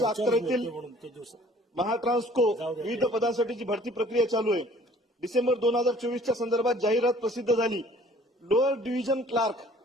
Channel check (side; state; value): both; normal; correlation 0.54